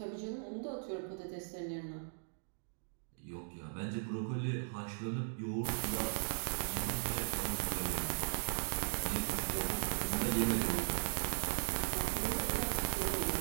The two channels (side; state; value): left; silent; digital silence